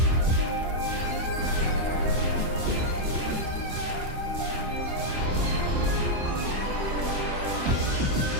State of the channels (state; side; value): late; left; 28 ms